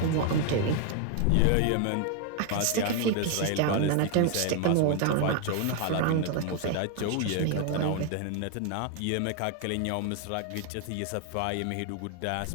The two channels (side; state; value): both; different; correlation 0.01